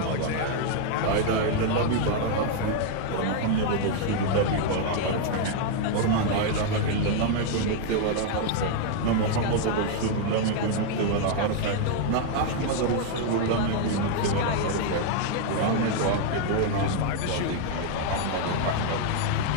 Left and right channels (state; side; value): different; both; correlation 0.00